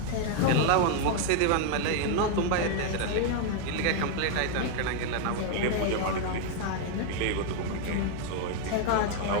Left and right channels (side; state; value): both; different; correlation 0.00